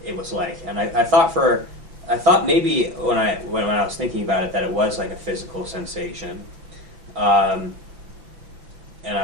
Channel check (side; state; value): left; late; 6.2 ms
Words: it was like, and I thought maybe when I was thinking about it that it was like a physical sensation, and